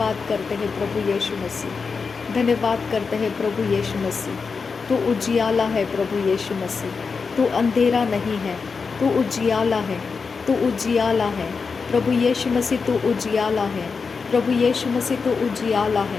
करते हैं प्रभु यीशु मसीह, धन्यवाद करते हैं प्रभु यीशु मसीह। तू उजियाला है प्रभु यीशु मसीह, तू अंधेरा नहीं है, तू उजियाला है, तू उजियाला है प्रभु यीशु मसीह, तू उजियाला है प्रभु यीशु मसीह, तू उजियाला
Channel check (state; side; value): quieter; right; 5.0 dB